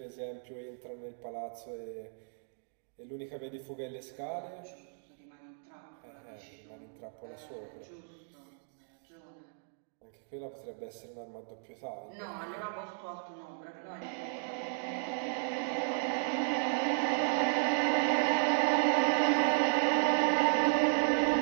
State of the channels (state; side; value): silent; left; digital silence